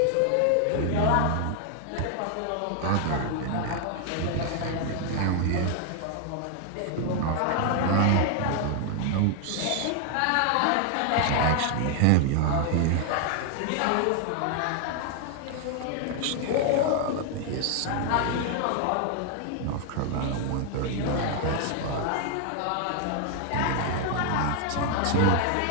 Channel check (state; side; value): different; both; correlation 0.00